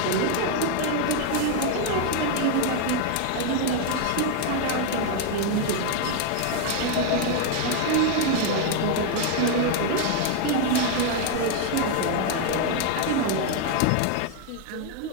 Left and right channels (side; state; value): both; different; correlation 0.00